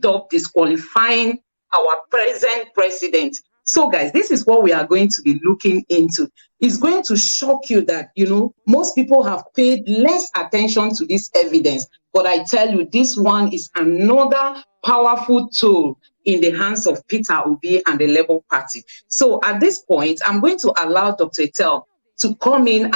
up disqualifying our present president. So, guys, this is what we are going to be looking into. It's going to shock you that, most people have paid less attention to this evidence. But I tell you, this one is another powerful tool in the hands of Peter Obi and the Labour Party. So at this point, I'm going to allow Dr. Etel to come in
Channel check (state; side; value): inverted; both; correlation -1.00